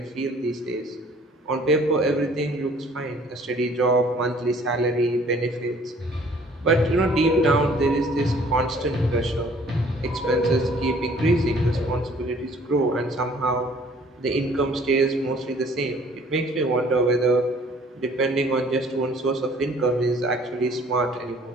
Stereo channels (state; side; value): normal; both; correlation 0.56